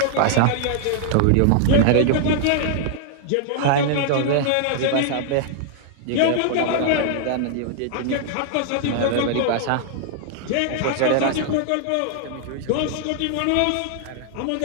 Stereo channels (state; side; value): different; both; correlation 0.00